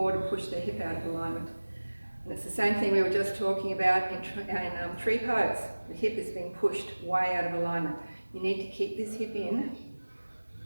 and push their hip out of alignment. And it's the same thing we were just talking about in tree pose. The hip is being pushed way out of alignment. You need to keep this hip in.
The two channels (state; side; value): inverted; both; correlation -1.00